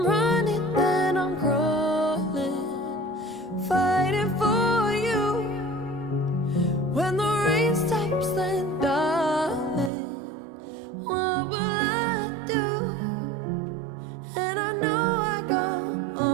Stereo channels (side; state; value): left; drops out; at 9.9 s